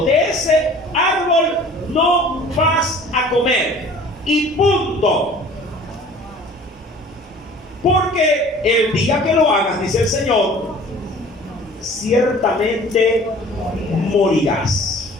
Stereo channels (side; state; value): both; normal; correlation 0.47